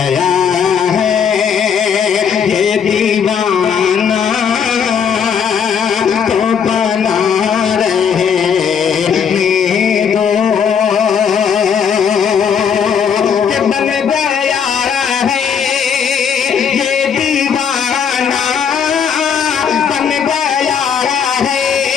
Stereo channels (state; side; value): quieter; right; 7.2 dB